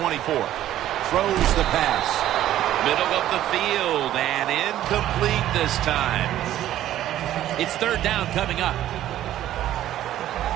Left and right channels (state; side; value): quieter; left; 12.8 dB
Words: Throws the pass. Middle of the field and incomplete this time. It's third down coming up.